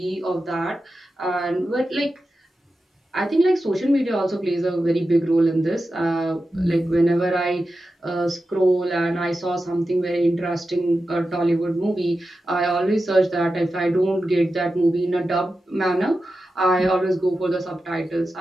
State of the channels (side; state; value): both; normal; correlation 0.91